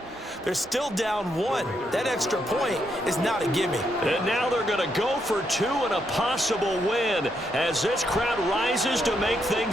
they're still down 1. That extra point is not a gimme. And now they're going to go for 2 and a possible win as this crowd rises to make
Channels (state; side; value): normal; both; correlation 0.78